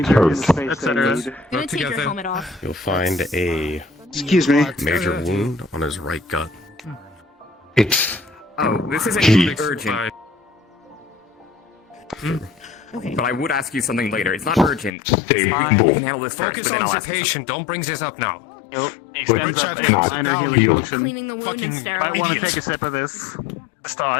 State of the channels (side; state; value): right; drops out; at 15.0 s